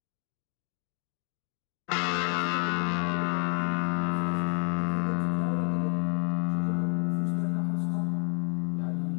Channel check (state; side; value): quieter; right; 39.2 dB